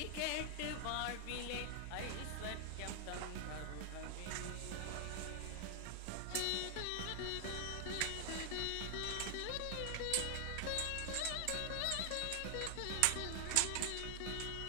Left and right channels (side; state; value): both; different; correlation 0.00